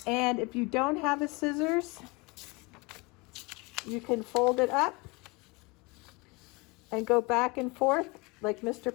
And if you don't have a scissors, you can fold it up and go back and forth like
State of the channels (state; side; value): quieter; right; 27.0 dB